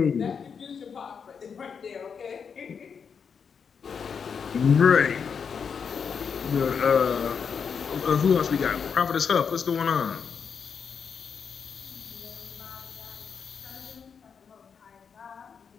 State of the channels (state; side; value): quieter; right; 6.4 dB